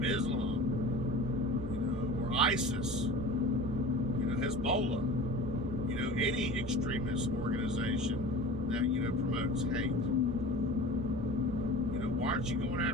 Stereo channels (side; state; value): both; normal; correlation 0.37